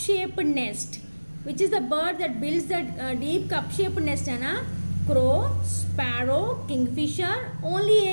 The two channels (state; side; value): inverted; both; correlation -1.00